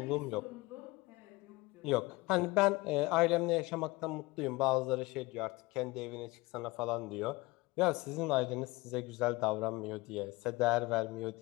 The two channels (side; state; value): right; quieter; 22.4 dB